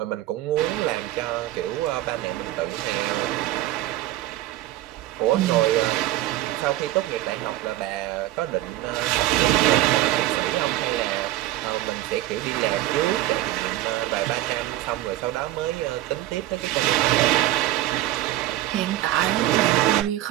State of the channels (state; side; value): quieter; left; 15.2 dB